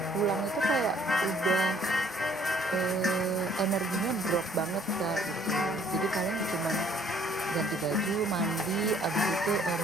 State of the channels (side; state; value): both; normal; correlation 0.61